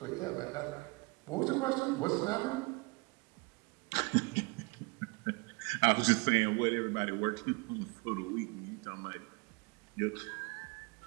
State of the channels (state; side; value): quieter; left; 27.7 dB